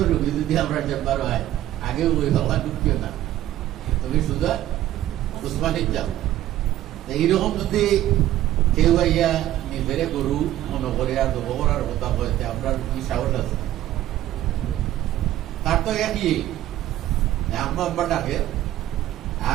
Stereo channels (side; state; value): left; quieter; 13.6 dB